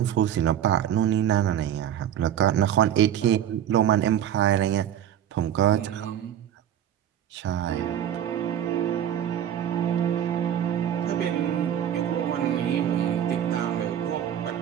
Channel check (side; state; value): left; quieter; 10.2 dB